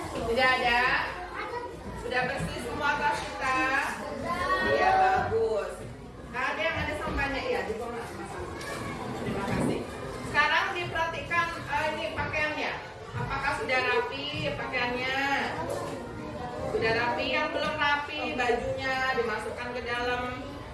Tidak ada? Sudah bersih semua tas kita? Iya, bagus. Nah, ada yang ada sampahnya? Iya, dibuang. Terima kasih. Sekarang diperhatikan ini pakaiannya. Apakah sudah rapi pakaiannya? Sudah rapi. Yang belum rapi, bajunya dimasukkan ke dalam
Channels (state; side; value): identical; both; correlation 1.00